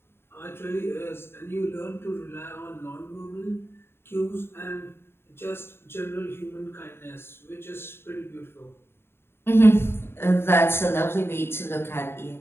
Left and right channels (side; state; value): right; late; 0.11 ms